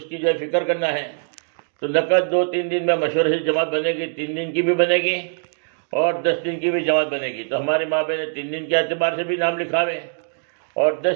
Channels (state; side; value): silent; left; digital silence